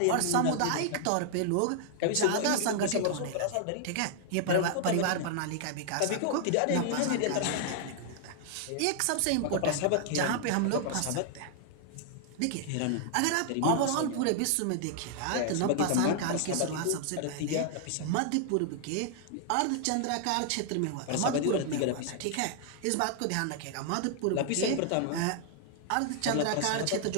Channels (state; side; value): different; both; correlation -0.01